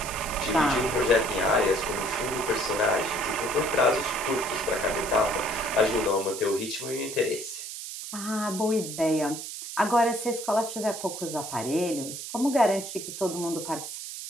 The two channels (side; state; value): right; noise; hiss, 8 dB below the sound